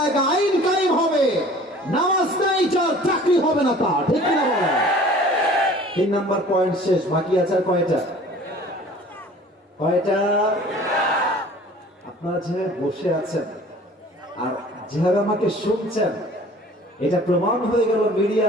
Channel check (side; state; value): both; normal; correlation 0.48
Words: আইন কায়েম হবে। নামাজ নাই যার চাকরি হবে না তার, ঠিক কিনা বলেন? 3 নাম্বার পয়েন্ট শেষ, বাকি আছে আর কয়টা? আপনারা যেভাবে বসে আছেন আর যেভাবে আমাকে শুনছেন, এটা প্রমাণ হয়ে গেল